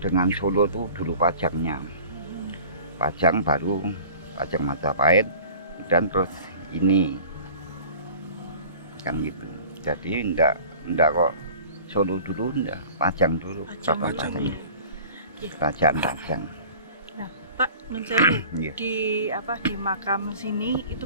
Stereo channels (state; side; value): inverted; both; correlation -0.44